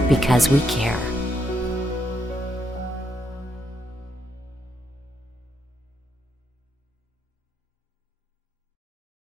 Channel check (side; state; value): both; normal; correlation 0.78